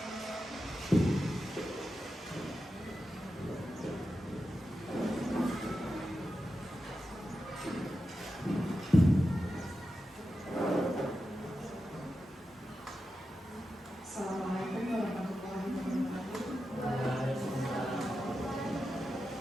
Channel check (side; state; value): both; normal; correlation 0.90